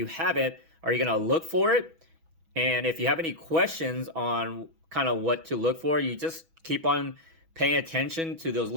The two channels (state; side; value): late; left; 6.1 ms